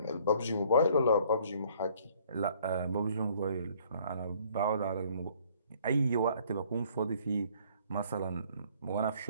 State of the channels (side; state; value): both; inverted; correlation -0.59